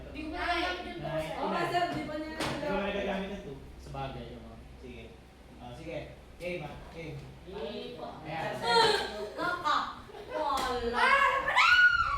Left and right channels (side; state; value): both; identical; correlation 1.00